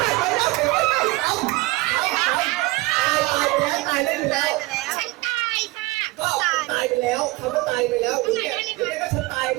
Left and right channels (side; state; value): left; quieter; 21.8 dB